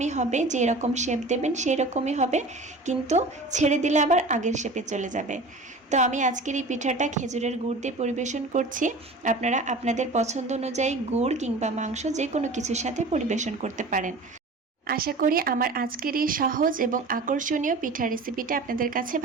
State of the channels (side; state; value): left; quieter; 3.1 dB